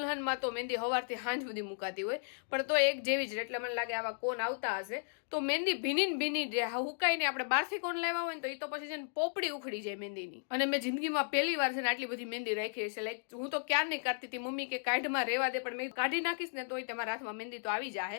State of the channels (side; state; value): right; silent; digital silence